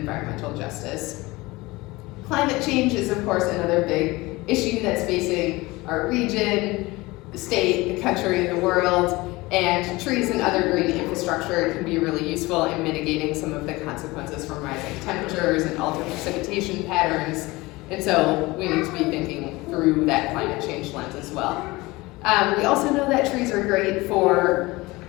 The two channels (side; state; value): right; quieter; 21.5 dB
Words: justice. Climate change is, of course, another big issue that's facing our region, the state, the country, the world, and trees and other green infrastructure can be really useful in mitigating some of the consequences from rising temperatures and altered precipitation patterns. And so we need to be thinking through that climate change lens as well. We also know that trees are great for